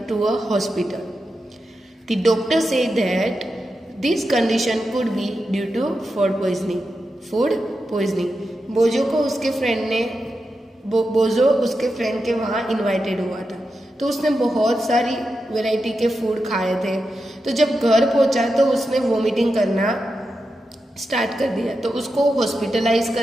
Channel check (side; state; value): both; normal; correlation 0.89